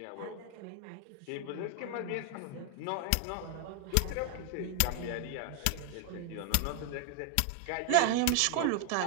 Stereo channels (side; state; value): both; different; correlation 0.01